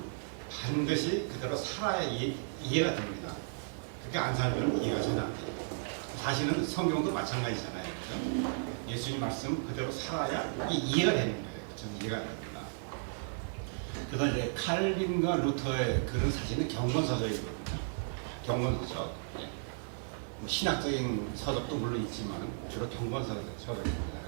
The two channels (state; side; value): silent; left; digital silence